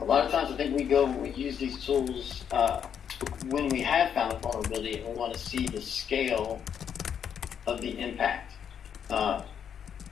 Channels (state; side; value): quieter; right; 8.2 dB